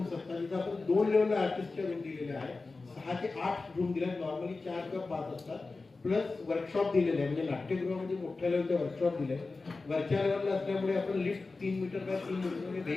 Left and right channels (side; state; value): right; quieter; 3.8 dB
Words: असतात. तिथं आपण 2 लेवलला आर्टिस्टच्या रूम दिलेल्या आहे. 6 ते 8 रूम दिल्या. नॉर्मली 4 किंवा 5 असतात. प्लस वर्कशॉप दिलेले आहे. म्हणजे नाट्यगृहामध्ये मोठ्या लेवलचे वर्कशॉप दिले. वरच्या लेवलला असल्यामुळे आपण लिफ्ट 3 मीटर बाय 3 मीटर म्हणजे